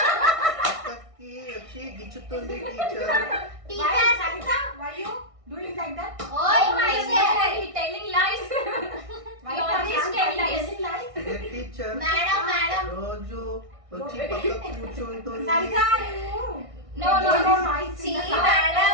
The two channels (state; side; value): late; left; 1.6 ms